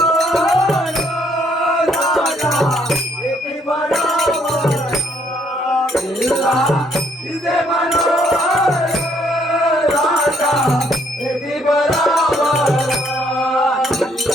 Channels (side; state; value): both; normal; correlation 0.68